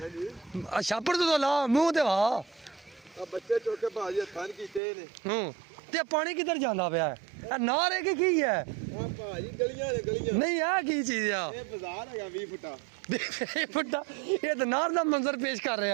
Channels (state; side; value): drops out; left; at 4.8 s